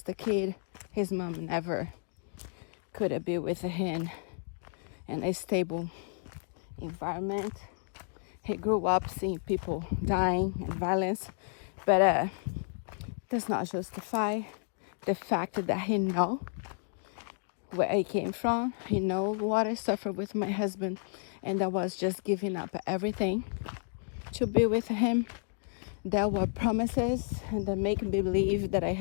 kid. His mom never could be with him in a stable environment. He grew up seeing people dying and violence, but does not justify the fact that he know where I came from. He know what I suffered with my husband, and I was just giving up everything to be with him. There were promises, and that make me believe that I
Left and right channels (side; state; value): right; silent; digital silence